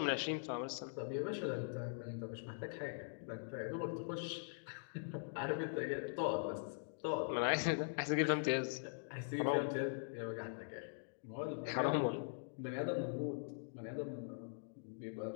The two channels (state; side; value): silent; right; digital silence